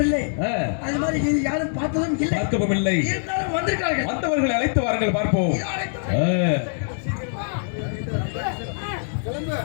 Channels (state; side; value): silent; right; 63 dB below the other